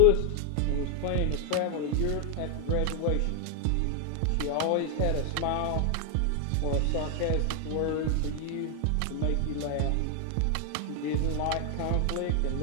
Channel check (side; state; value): both; different; correlation 0.00